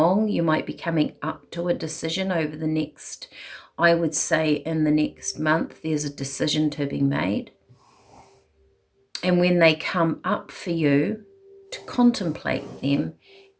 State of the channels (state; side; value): identical; both; correlation 1.00